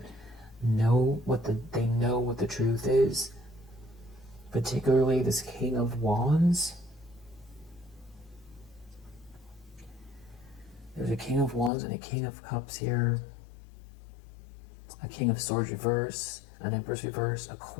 know what the truth is. Particularly this King of Wands. There's a King of Wands and a King of Cups here. A King of Swords reverse, an Empress reverse, a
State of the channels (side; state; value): right; drops out; at 11.7 s